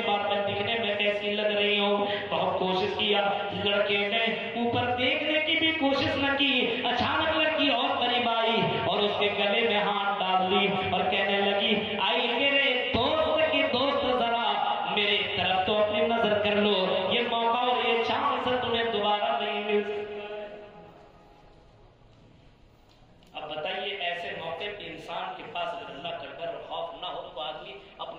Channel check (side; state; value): both; identical; correlation 1.00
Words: بار، میں دکھنے میں کیسی لگ رہی ہوں۔ بہت کوشش کیا، لڑکے نے اوپر دیکھنے کی بھی کوشش نہ کی، اچانک لڑکی اور قریب آئی اور اس کے گلے میں ہاتھ ڈال دی اور کہنے لگی، آئی میرے دوست کی دوست، ذرا میرے طرف تو اپنی نظر کر لو، یہ موقع اور یہ چانس تمہیں دوبارہ نہیں مل سکتا۔ اب بتائیے ایسے موقع پہ انسان کے پاس اگر اللہ کا ڈر اور خوف نہ ہو تو آدمی